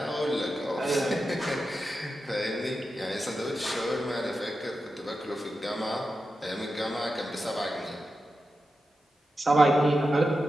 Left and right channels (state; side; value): normal; both; correlation 0.90